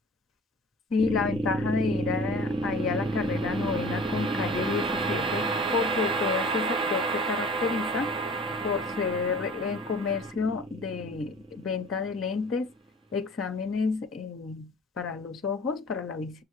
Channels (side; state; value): both; normal; correlation 0.44